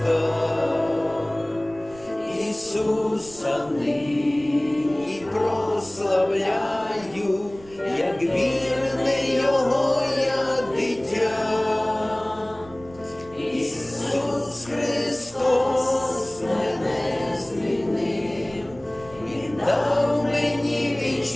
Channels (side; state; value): right; noise; rumble, 21 dB below the sound